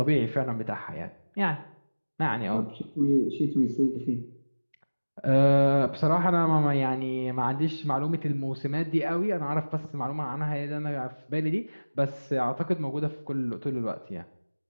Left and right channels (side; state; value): both; inverted; correlation -1.00